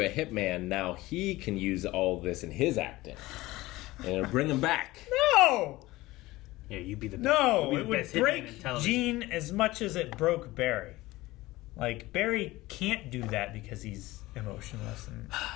hitman. Now he can use all this in his acting. and bring him back. No! Yeah, you'd be the best. No, you'd it be the would best hitman in break television. Gene as much as it broke Barry. Like, Barry can't do that because he's emotionless and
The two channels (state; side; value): quieter; right; 18.8 dB